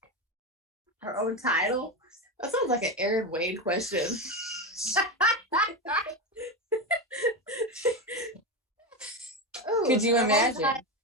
Her own title? That sounds like an Aaron Wade question. Ooh, Could you imagine?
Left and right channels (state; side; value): normal; both; correlation 0.16